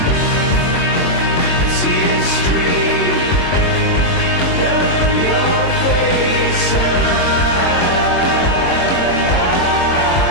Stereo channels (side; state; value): right; late; 22 ms